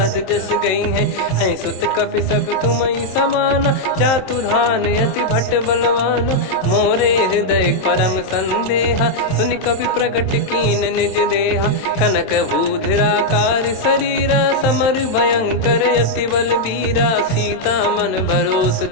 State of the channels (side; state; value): right; late; 27 ms